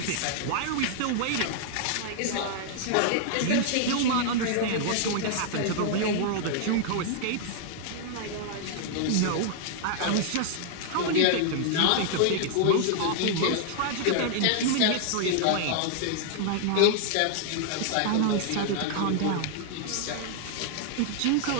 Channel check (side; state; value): both; different; correlation 0.00